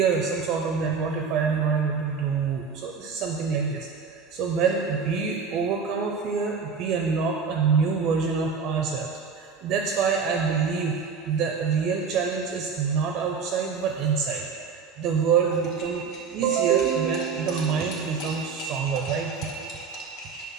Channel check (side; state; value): left; quieter; 5.7 dB